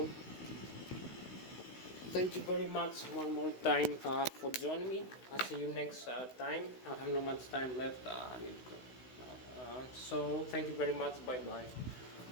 thank you very much one more time for joining me. I'll see you next time. I have not much time left. I need to go. So thank you very much. Bye bye.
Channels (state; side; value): late; right; 16 ms